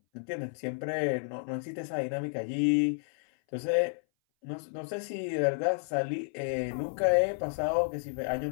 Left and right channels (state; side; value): silent; right; 57 dB below the other